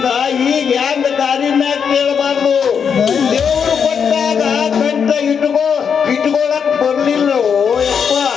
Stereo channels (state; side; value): quieter; right; 6.9 dB